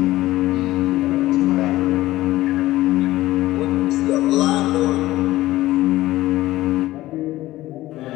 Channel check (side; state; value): right; quieter; 16.5 dB